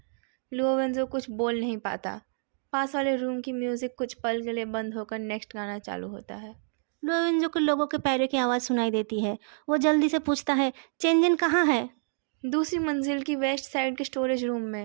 लुओ वेंजो कुछ बोल नहीं पाता। पास वाले रूम की म्यूज़िक कुछ पल के लिए बंद होकर नेक्स्ट गाना चालू होता है। लुओ वेंजो को लोगों के पैरों की आवाज़ सुनाई देती है। वो जल्दी से पूछता है, चेंजन कहाँ है? दूसरी मंजिल की वेस्ट साइड के स्टोरेज रूम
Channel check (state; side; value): silent; left; digital silence